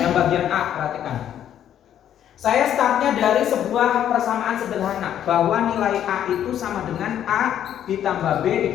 bagian A, perhatikan. Saya startnya dari sebuah persamaan sederhana bahwa nilai A itu sama dengan A ditambah B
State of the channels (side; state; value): right; quieter; 10.4 dB